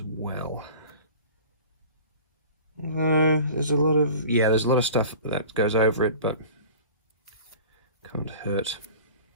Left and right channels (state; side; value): inverted; both; correlation -0.41